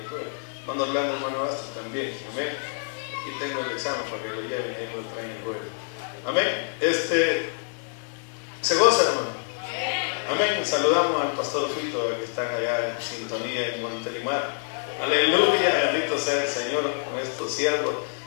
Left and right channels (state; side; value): silent; right; digital silence